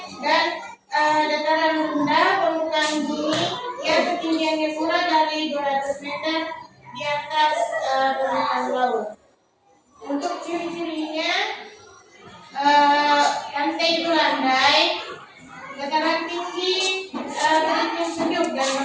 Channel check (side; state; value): both; identical; correlation 1.00